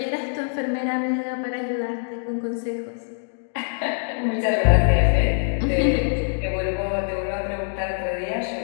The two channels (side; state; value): right; silent; digital silence